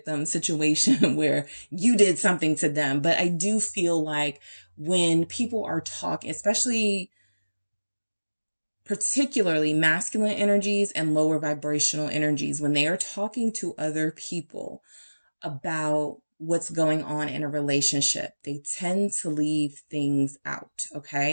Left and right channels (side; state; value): both; inverted; correlation -1.00